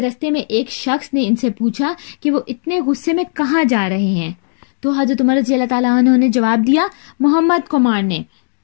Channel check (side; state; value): right; silent; 67 dB below the other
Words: में एक शख्स ने इनसे पूछा कि वो इतने गुस्से में कहाँ जा रहे हैं। तो हजरत उमर रज़ी अल्लाह ताला अन्हु ने जवाब दिया, मोहम्मद को मारने।